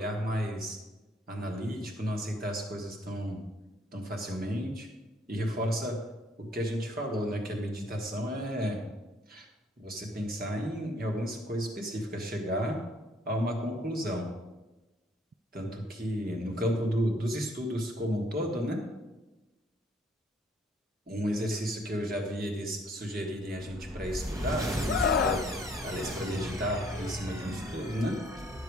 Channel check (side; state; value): both; normal; correlation 0.63